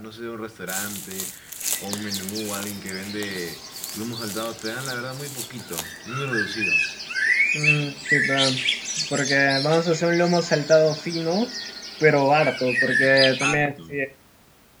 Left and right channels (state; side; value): identical; both; correlation 1.00